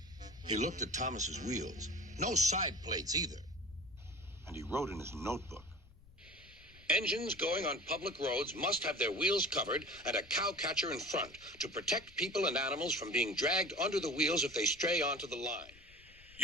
He looked at Thomas's wheels. No side plates either. And he wrote in his notebook. Engines going on public roads must have their wheels covered and a cowcatcher in front to protect people and animals from being dragged under the wheels if they stray onto the line.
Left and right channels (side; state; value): left; noise; rumble, 24 dB below the sound